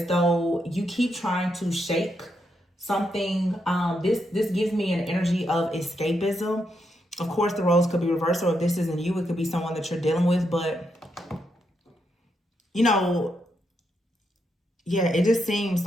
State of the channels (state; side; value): normal; both; correlation 0.81